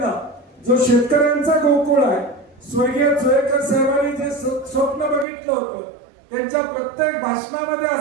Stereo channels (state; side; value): drops out; left; at 5.2 s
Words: जो शेतकऱ्यांचा गोकुळ आहे, स्वर्गीय जोयकर साहेबांनी जे स्वप्न बघितलं होतं त्यांच्या प्रत्येक भाषणामध्ये